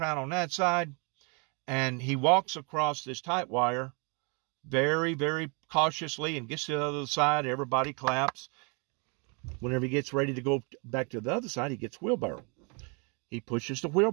on that side, and he walks across this tight wire very, very cautiously and gets to the other side. Everybody claps. Whenever he gets ready to go back to the other side, he gets wheelbarrow. He pushes the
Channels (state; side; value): quieter; left; 34.0 dB